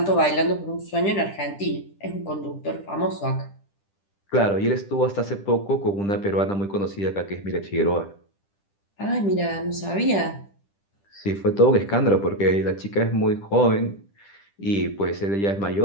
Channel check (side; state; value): right; late; 10 ms